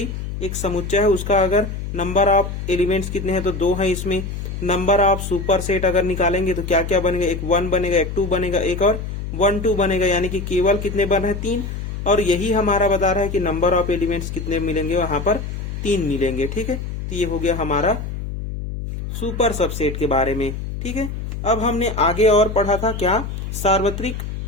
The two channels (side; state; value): left; noise; hum, 6 dB below the sound